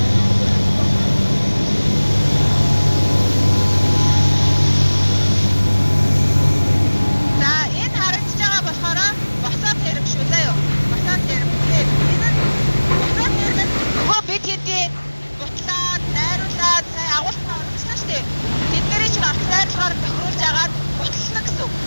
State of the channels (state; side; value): inverted; both; correlation -1.00